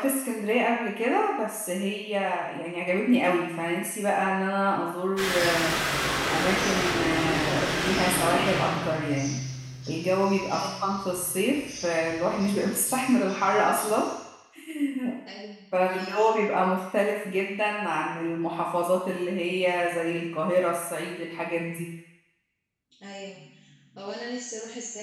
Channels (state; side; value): identical; both; correlation 1.00